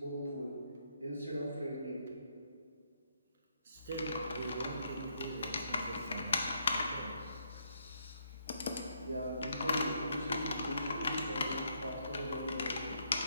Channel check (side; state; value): both; inverted; correlation -0.73